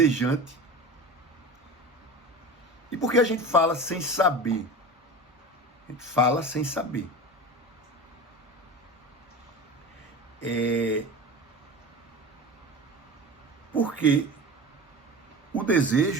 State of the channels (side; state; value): both; normal; correlation 0.31